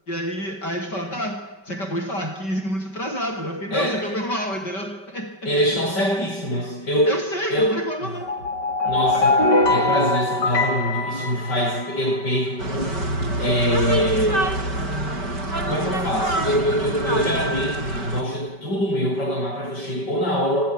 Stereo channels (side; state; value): right; late; 5.2 ms